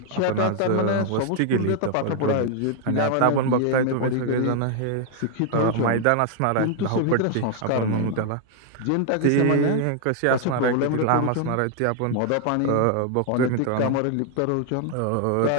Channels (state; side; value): different; both; correlation 0.00